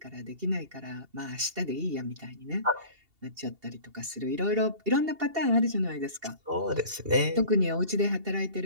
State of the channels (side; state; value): left; late; 2.7 ms